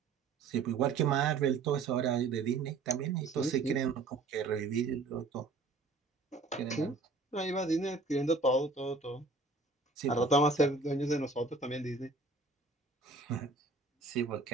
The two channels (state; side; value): quieter; left; 3.9 dB